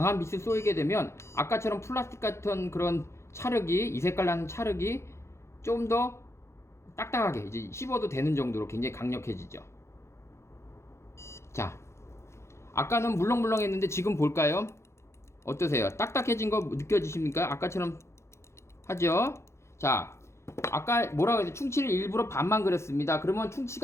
빛을 쏘이게 되면 아까처럼 플라스틱 같은 그런 찰흙이 이 색깔 나는 찰흙이 좀 더 딱딱하게 이제 씹어도 되는 정도로 굉장히 강력해지죠. 자, 아까는 물렁물렁했는데 지금 볼까요? 어떠세요? 딱딱해진 거 느껴지십니까? 아까처럼 하죠? 자, 아까 뭐라고 했죠? 충치를 일부러 반만 그렸습니다. 그러면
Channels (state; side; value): late; right; 0.13 ms